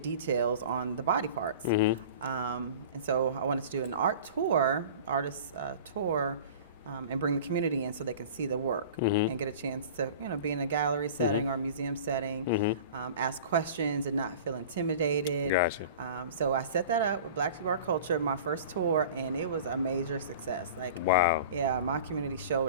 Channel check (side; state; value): both; inverted; correlation -0.40